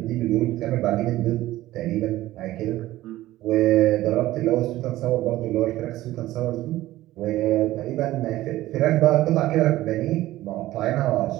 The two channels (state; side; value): quieter; left; 15.9 dB